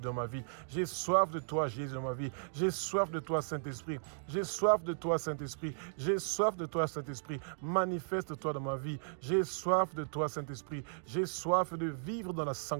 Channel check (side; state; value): left; silent; digital silence